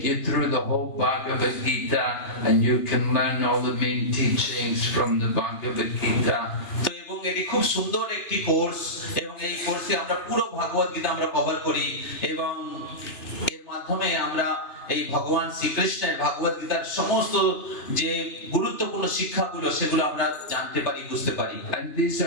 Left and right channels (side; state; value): right; late; 2.9 ms